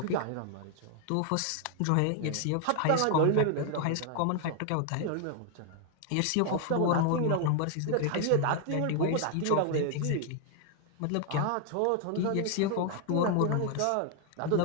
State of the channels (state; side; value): different; both; correlation 0.00